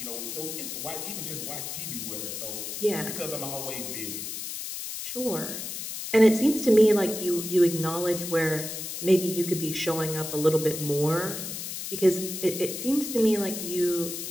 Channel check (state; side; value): noise; left; hiss, 6 dB below the sound